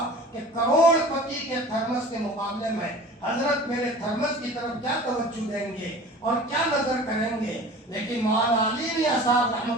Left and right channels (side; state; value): both; normal; correlation 0.41